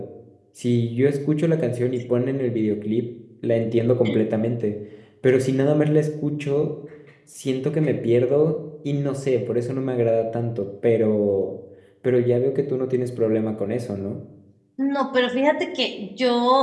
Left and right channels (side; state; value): both; identical; correlation 1.00